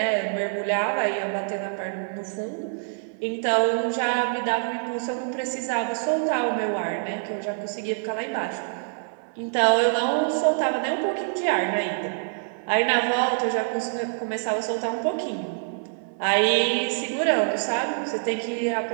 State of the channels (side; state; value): left; silent; digital silence